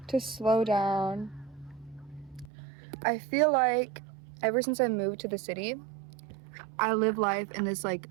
to slow down. I feel like ever since I moved to the city, I live life in this like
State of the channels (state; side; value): drops out; left; at 2.5 s